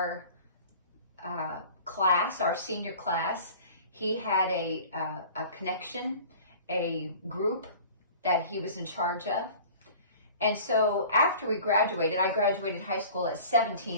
class, our senior class, he had a connection, a group that he was in charge of. And so after we graduated, I graduated high school at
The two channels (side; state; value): both; inverted; correlation -0.43